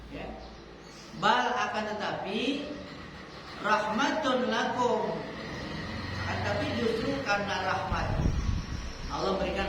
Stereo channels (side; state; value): both; identical; correlation 1.00